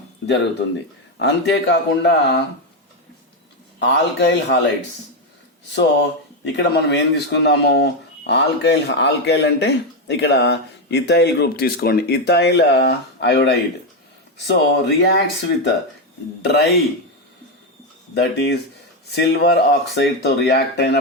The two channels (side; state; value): both; normal; correlation 0.07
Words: జరుగుతుంది. అంతేకాకుండా ఆల్కైల్ హాలైడ్స్. సో ఇక్కడ మనం ఏం తీసుకుందాము? ఆల్కైల్ అంటే ఇక్కడ ఇథైల్ గ్రూప్ తీసుకోండి. Ethyl iodide. So reacts with dry, that is silver oxide తో రియాక్ట్